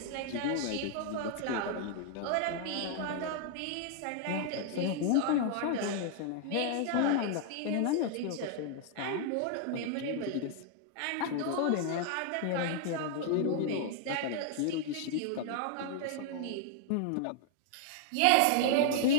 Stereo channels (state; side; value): different; both; correlation 0.00